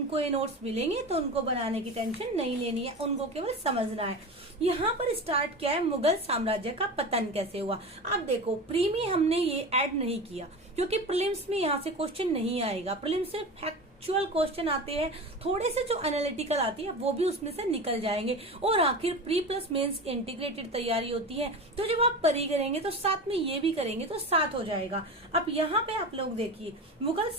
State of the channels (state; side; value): normal; both; correlation 0.29